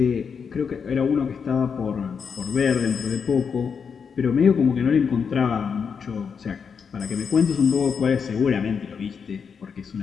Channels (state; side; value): quieter; right; 6.3 dB